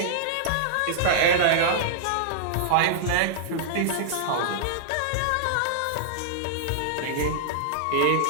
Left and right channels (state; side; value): different; both; correlation -0.02